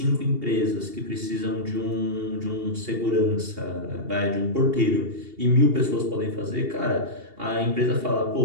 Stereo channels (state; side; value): late; left; 2.8 ms